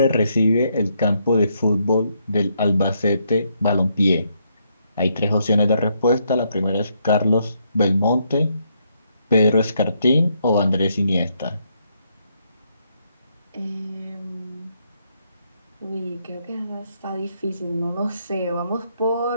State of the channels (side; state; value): both; inverted; correlation -0.75